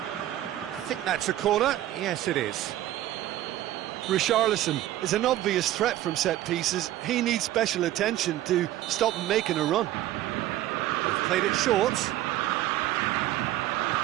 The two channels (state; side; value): quieter; left; 14.1 dB